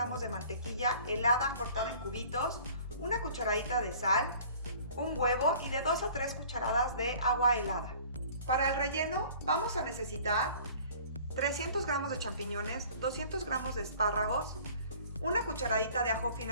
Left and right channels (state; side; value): inverted; both; correlation -0.50